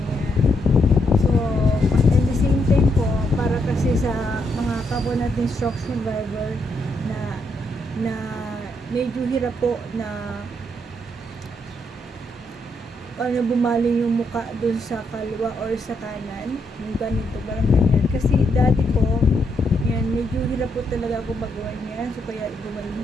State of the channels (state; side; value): normal; both; correlation 0.77